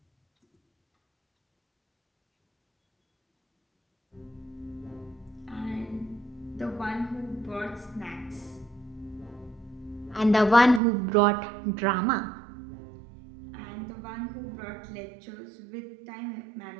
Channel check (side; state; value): left; drops out; at 10.8 s